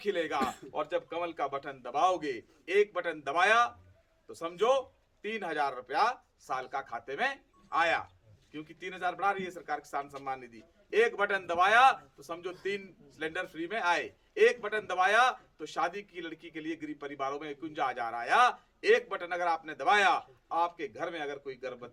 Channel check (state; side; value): identical; both; correlation 1.00